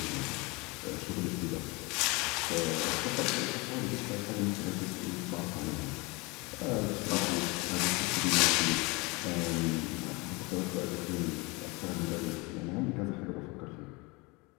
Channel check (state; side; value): quieter; right; 26.2 dB